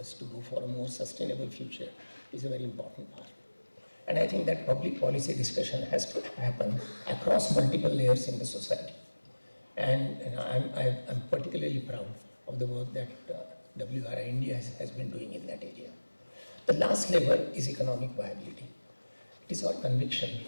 to go for a more sustainable future is a very important part. And I think that public policy discussion has to happen across multiple layers in the society. And I'm particularly proud of the work that WRI India has been doing in that area. The last level is economic viability. It is our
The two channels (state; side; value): inverted; both; correlation -1.00